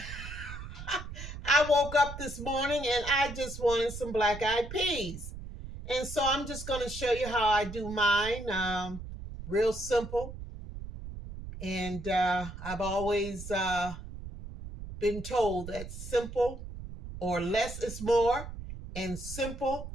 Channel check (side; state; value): right; noise; rumble, 10 dB below the sound